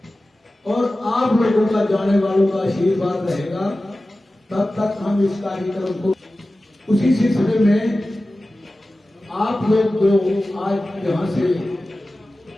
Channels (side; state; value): both; normal; correlation 0.95